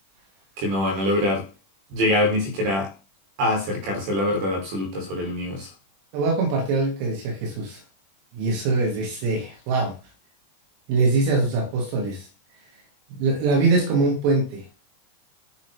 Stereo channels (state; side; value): late; left; 20 ms